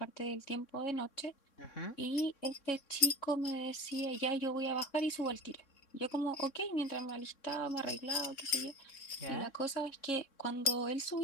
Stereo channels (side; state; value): right; late; 3.6 ms